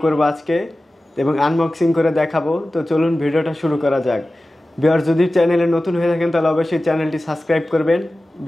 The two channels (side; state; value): both; normal; correlation 0.96